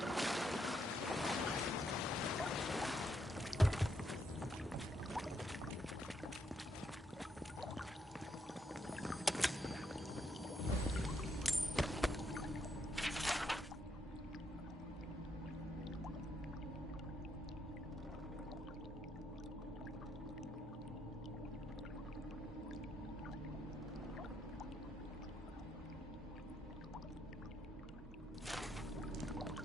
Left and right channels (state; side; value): normal; both; correlation 0.77